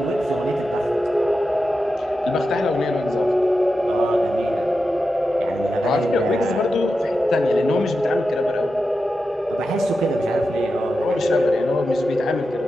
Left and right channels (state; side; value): normal; both; correlation 0.90